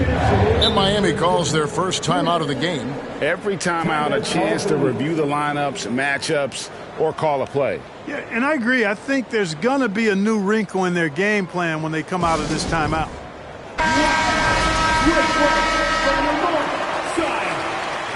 Miami calls their first timeout of the game. Every timeout, a chance to review the lineups, matchups, or call a play. Yeah, and I agree. I think there's going to be a new wrinkle in their game plan when they come out of this timeout.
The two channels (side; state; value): both; identical; correlation 1.00